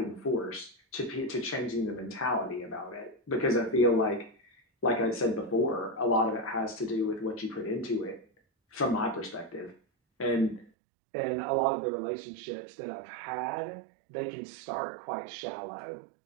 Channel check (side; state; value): left; drops out; at 10.7 s